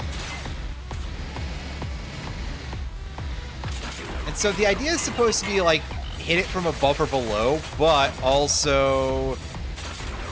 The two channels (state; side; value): identical; both; correlation 1.00